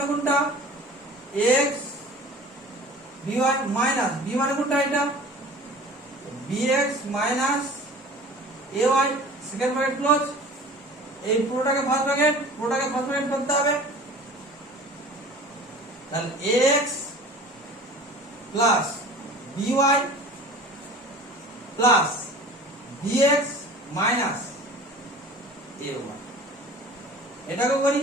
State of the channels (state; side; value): normal; both; correlation 0.42